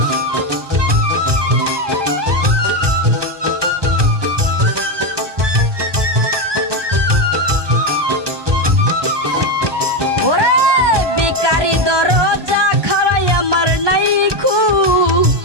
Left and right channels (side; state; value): left; late; 1.2 ms